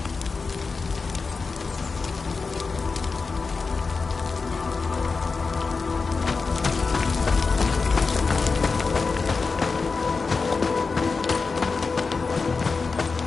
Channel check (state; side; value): quieter; right; 4.5 dB